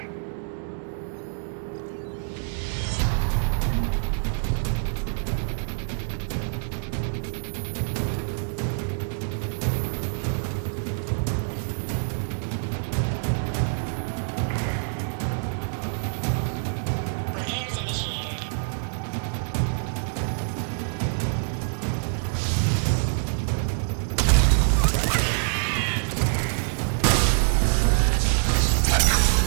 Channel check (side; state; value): left; silent; digital silence